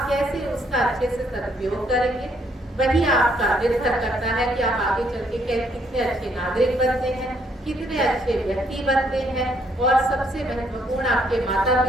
कैसे उसका अच्छे से सदुपयोग करेंगे, वही आपका निर्भर करता है कि आप आगे चल के कितने अच्छे नागरिक बनते हैं, कितने अच्छे व्यक्ति बनते हैं। और सबसे महत्वपूर्ण आपके माता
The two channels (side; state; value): both; normal; correlation 0.70